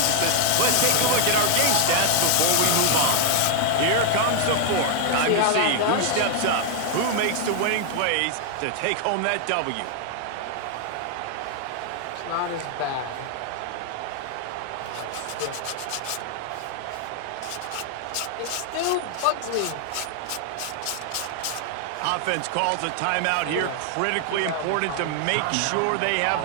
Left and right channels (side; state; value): both; different; correlation 0.00